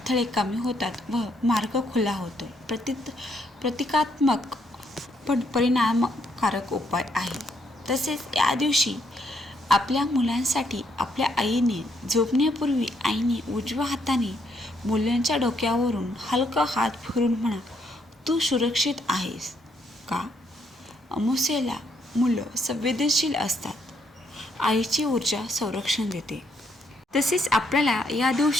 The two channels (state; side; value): normal; both; correlation 0.73